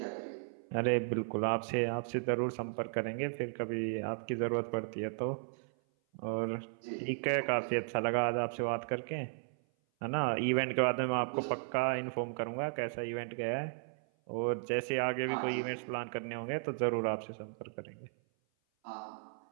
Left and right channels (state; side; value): silent; left; 54 dB below the other